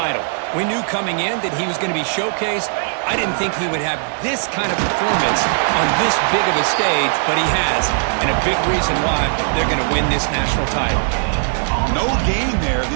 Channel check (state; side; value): silent; left; digital silence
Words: We knew coming in that he was going to be showcased. I didn't think he would have this kind of performance on this big of a stage, but he has, and a big reason why they're going to win this national title. No gain there.